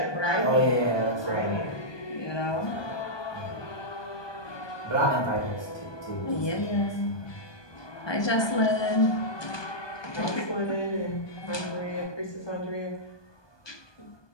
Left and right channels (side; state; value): right; late; 1.2 ms